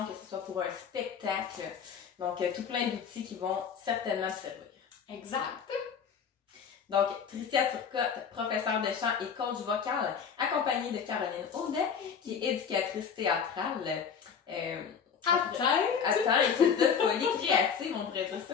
que ce soit pour un spectacle. Donc, tout plein d'outils qui vont certainement te servir. Exact. Donc, Tricia Turcotte, professeure de chant et coach vocal, accompagnée de Caroline Audet, qui est éducatrice théâtrale. Attends, équipe de folie créative, on pourrait dire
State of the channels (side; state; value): right; quieter; 6.9 dB